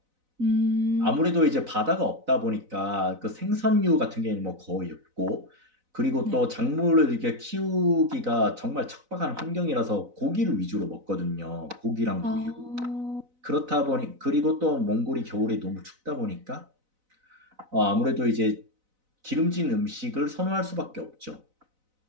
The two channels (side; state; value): left; late; 4.0 ms